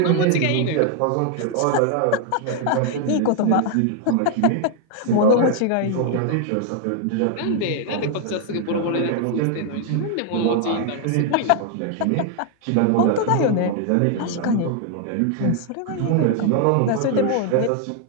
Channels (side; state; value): both; different; correlation 0.00